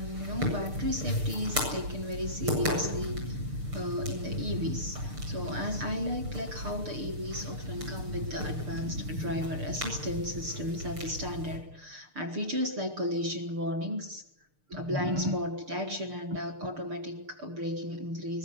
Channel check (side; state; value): left; late; 6.7 ms